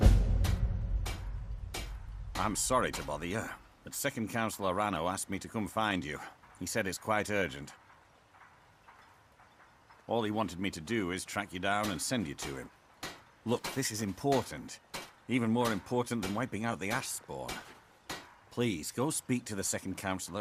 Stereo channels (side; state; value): both; identical; correlation 1.00